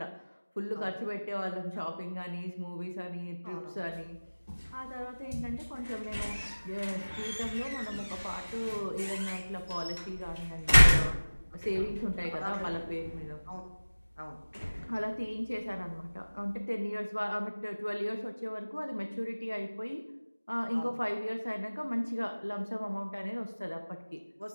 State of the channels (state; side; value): inverted; both; correlation -1.00